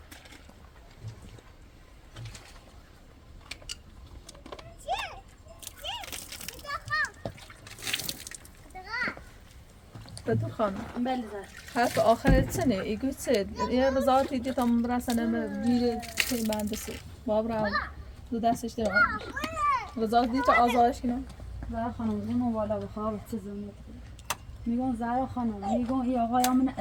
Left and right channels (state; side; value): identical; both; correlation 1.00